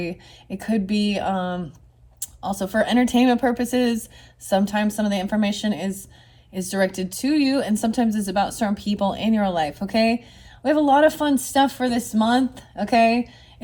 It could be also for entertainment purposes. Sometimes some of the information is directed to you, and sometimes it's about certain people in your life, okay? We have a lot of fun stuff for this month, okay?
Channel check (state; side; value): identical; both; correlation 1.00